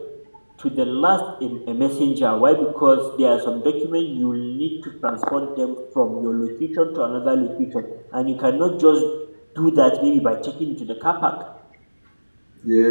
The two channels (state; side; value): inverted; both; correlation -1.00